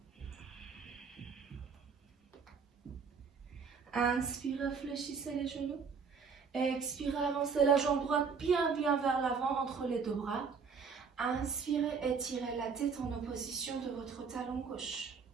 Inspirez, fléchissez les genoux. Expirez, avancez la jambe droite bien vers l'avant entre les deux bras. Inspirez, étirez la tête en opposition de votre talon gauche.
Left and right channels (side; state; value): left; quieter; 5.6 dB